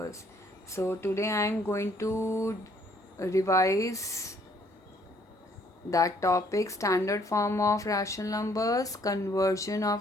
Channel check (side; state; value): both; normal; correlation 0.64